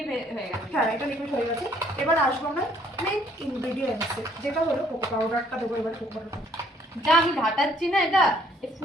হয়ে গেছে। হ্যাঁ এটা লিকুইড হয়ে গেছে। এবার আসবো আমরা মেন ইনগ্রেডিয়েন্টসে, যেটা হলো কোকো পাউডারটা দেবো। এবার কোকো পাউডার যা আমি ঘাটাচ্ছি না, এটা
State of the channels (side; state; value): both; normal; correlation 0.63